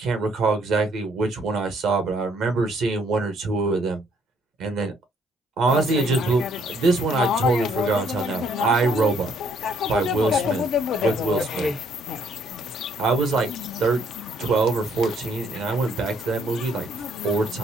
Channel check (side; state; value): both; normal; correlation 0.66